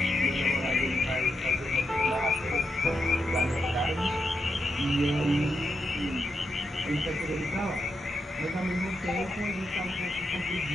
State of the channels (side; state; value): both; normal; correlation 0.84